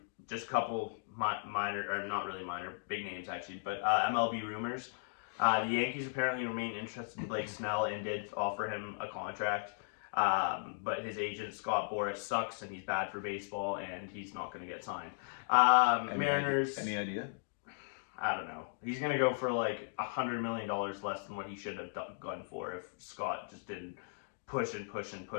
just couple minor, or not really minor, big names actually, but MLB rumors. The Yankees apparently remain interested in Blake Snell and did offer him a contract. But his agent Scott Boras sucks and he's bad for baseball and he's not going to get signed. Mariners. Any idea? I don't know. He's going to go for like $100 million less than what he should have gone for if Scott just didn't push and push and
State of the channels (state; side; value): silent; right; digital silence